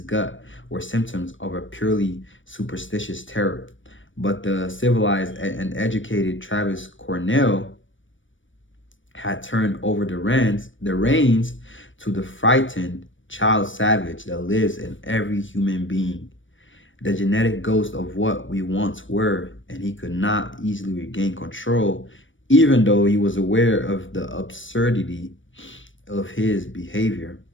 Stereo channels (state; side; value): late; right; 0.56 ms